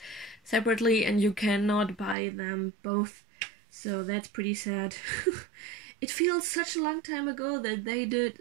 separately, and you cannot buy them both, so that's pretty sad. It feels such a long time ago that they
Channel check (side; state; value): left; drops out; at 2.1 s